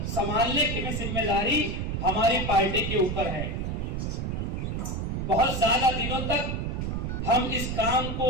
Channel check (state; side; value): noise; right; rumble, 2 dB below the sound